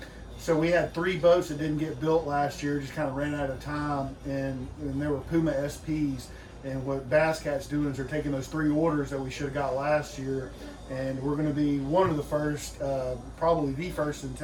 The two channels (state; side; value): identical; both; correlation 1.00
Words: had 3 boats that didn't get built last year, just kind of ran out of time, and there were Puma SPs. And what Basscat's doing is they're taking those 3 orders that we should have got last year, and we're going to be one of the first, probably the first in